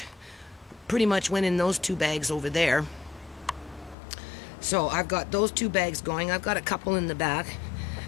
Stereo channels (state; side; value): drops out; right; at 4.0 s